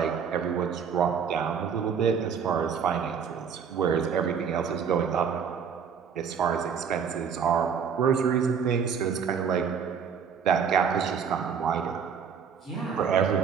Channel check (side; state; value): left; quieter; 6.8 dB